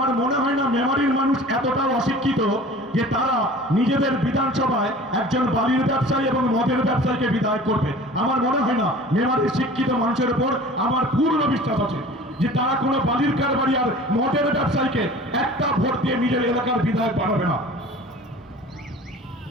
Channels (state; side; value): normal; both; correlation 0.43